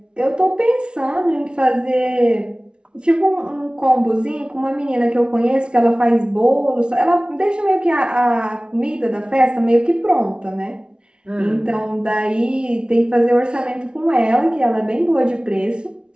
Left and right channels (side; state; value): left; late; 0.056 ms